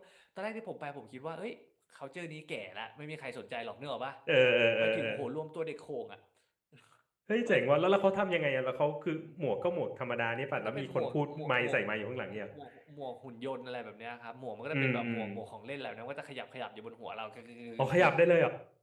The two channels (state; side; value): identical; both; correlation 1.00